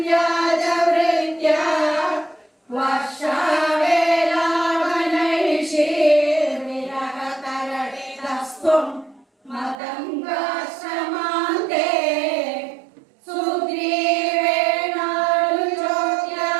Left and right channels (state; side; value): drops out; left; at 9.8 s